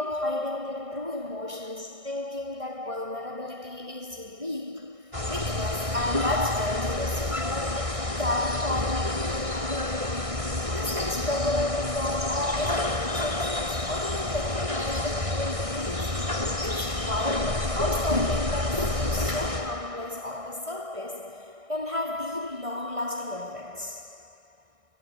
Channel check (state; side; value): late; left; 1.6 ms